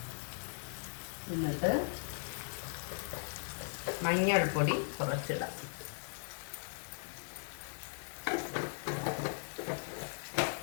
എന്നിട്ട് മഞ്ഞൾപ്പൊടി കുറച്ചിടാം.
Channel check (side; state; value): right; silent; digital silence